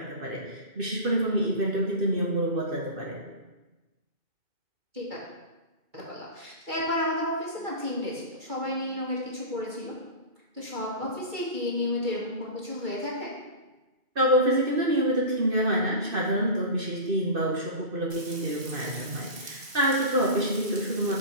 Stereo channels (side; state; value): left; late; 2.7 ms